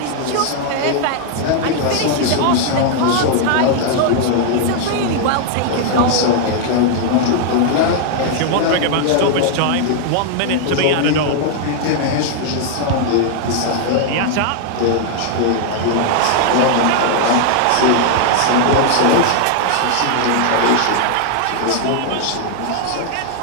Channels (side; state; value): both; different; correlation 0.00